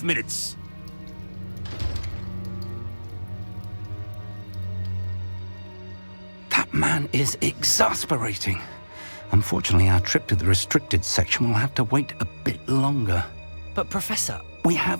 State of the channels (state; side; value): inverted; both; correlation -1.00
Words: minutes. That man is exasperating. Unfortunately, our trip to the restricted section will have to wait a bit longer. But Professor... We